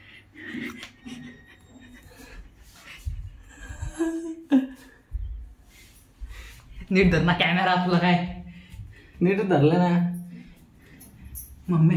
नीट धर ना कॅमेरा तुला काय नीट धरलं ना.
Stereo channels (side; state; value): both; identical; correlation 1.00